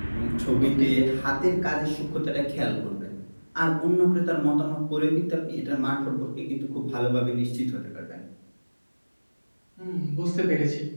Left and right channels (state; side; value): inverted; both; correlation -1.00